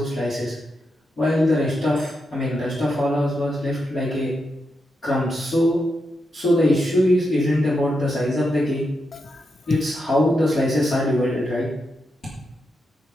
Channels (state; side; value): normal; both; correlation 0.85